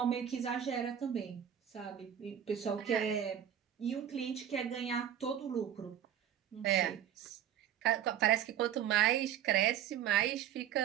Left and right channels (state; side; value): quieter; left; 9.8 dB